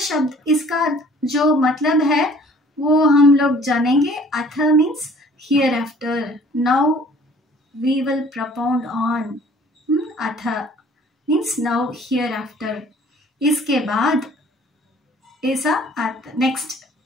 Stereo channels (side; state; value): both; normal; correlation 0.53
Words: शब्द इसका जो मतलब है वो हम लोग जानेंगे। अथ means hereafter, now we will propound on. अथ means now hereafter, इसके बाद ऐसा अर्थ, नेक्स्ट